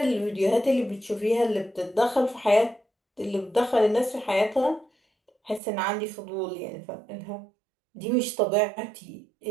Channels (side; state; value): left; drops out; at 5.6 s